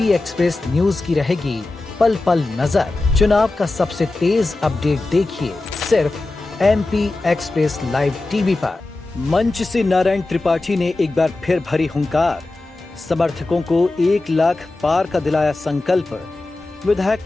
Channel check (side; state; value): right; quieter; 3.1 dB